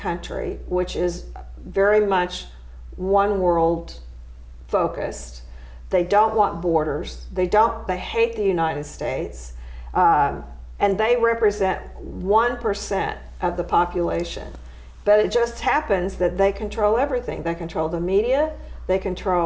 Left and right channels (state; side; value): identical; both; correlation 1.00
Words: which is very much one world focused. They don't want borders. They hate the United States, and they represent 1% of the population. But it just happens that they control everything. They control the media. They